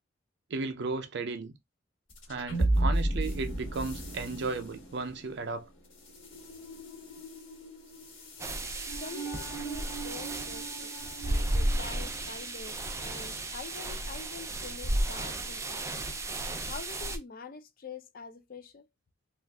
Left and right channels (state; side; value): normal; both; correlation 0.63